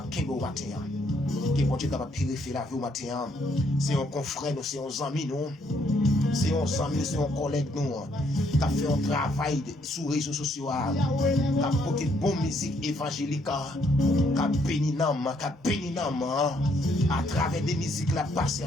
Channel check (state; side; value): normal; both; correlation 0.70